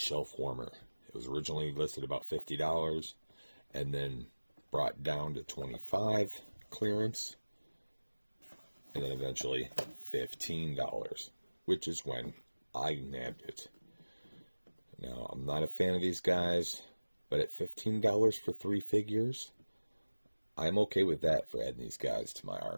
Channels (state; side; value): inverted; both; correlation -1.00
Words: warmer. It was originally listed about $50, and then brought down to $25 clearance, and then eventually $15, which is when I nabbed it. Now, I'm not a fan of these guys, but at $15 for 3 figures, I'm okay with that for adding these guys to my